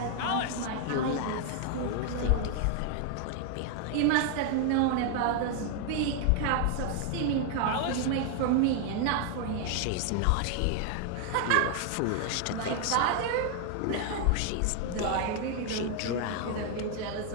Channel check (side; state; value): both; different; correlation 0.00